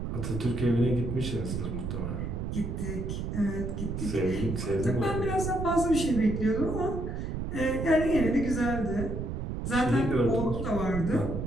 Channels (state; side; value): noise; right; rumble, 4 dB below the sound